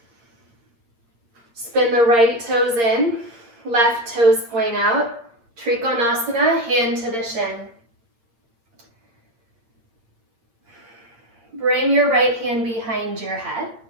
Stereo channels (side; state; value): left; late; 8.7 ms